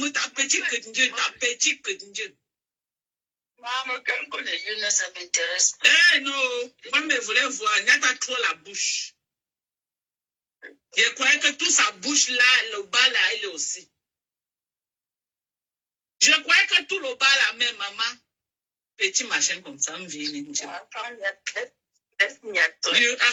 t'as petit que Dieu, t'as petit que Dieu. Maman, quand on est jeune, ça m'intéresse. Eh non, moi, je voulais voir, il n'y a pas trop la bouche. Je croyais que toute sa bouche là, le bas là, il est aussi. Je croyais que tout le bas là, même maman, petit machin comme ça, me vient.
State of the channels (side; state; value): both; identical; correlation 1.00